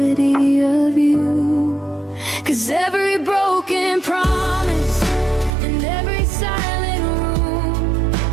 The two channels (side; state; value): left; drops out; at 5.5 s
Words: of you. 'Cause every broken promise and every silent room